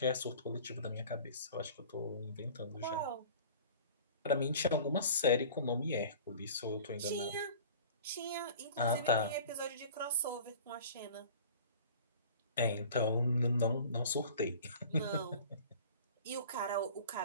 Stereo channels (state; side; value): inverted; both; correlation -0.43